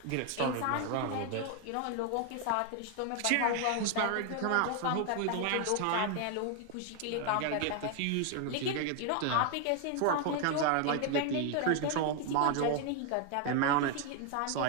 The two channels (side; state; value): both; different; correlation 0.01